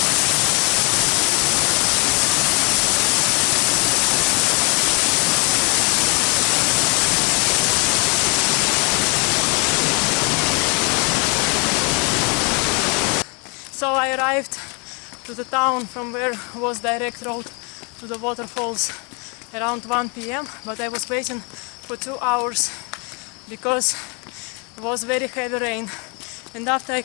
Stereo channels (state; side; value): quieter; right; 33.7 dB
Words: So I arrived to the town from where was direct road to the waterfalls around 1 p.m. but I was waiting for 2 hours because it was very heavy rain. And after I